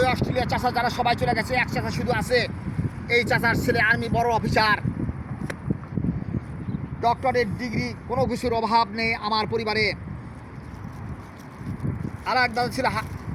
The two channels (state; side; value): identical; both; correlation 1.00